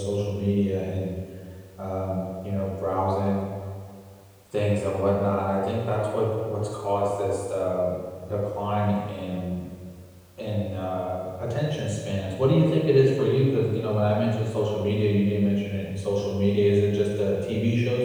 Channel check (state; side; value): identical; both; correlation 1.00